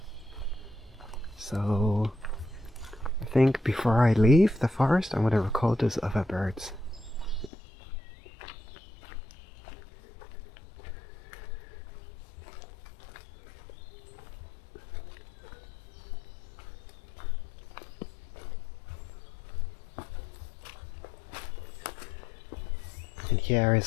so I think before I leave the forest I'm going to record those other birds. And here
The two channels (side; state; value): right; drops out; at 7.5 s